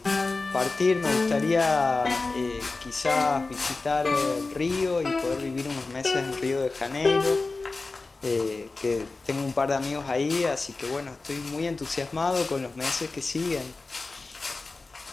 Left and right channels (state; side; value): quieter; right; 3.6 dB